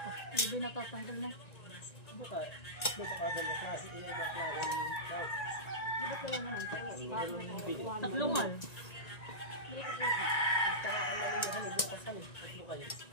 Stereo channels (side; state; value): right; late; 1.9 ms